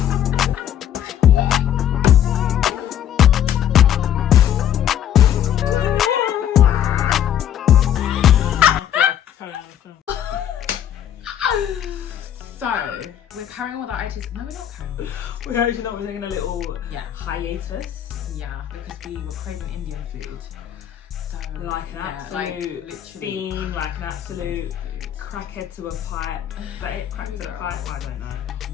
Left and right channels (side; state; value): right; quieter; 10.2 dB